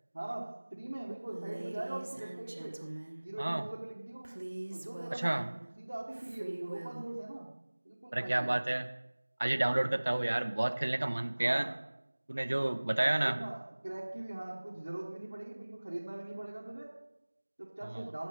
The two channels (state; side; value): inverted; both; correlation -1.00